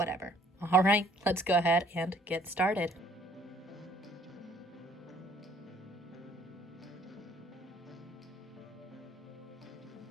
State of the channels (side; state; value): both; normal; correlation 0.61